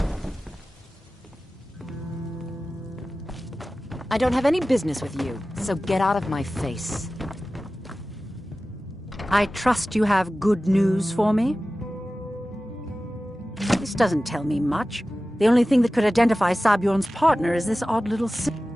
I don't have any business with you, so get out of my face. I trust you have good news for me? This doesn't tell me much. The only thing that could identify Sabjorn's partner is this odd little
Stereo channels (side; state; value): both; normal; correlation 0.96